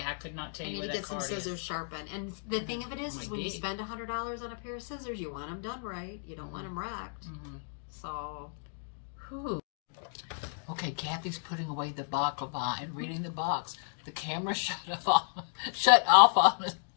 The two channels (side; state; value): right; silent; digital silence